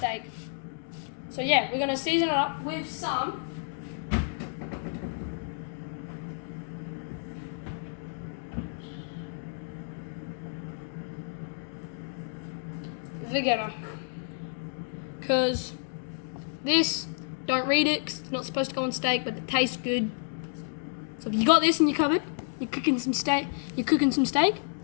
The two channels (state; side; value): silent; right; digital silence